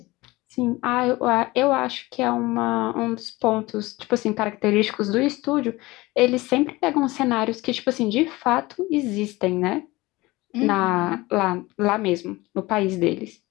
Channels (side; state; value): right; quieter; 20.7 dB